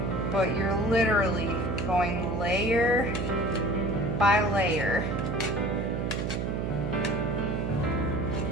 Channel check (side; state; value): right; noise; hum, 1 dB below the sound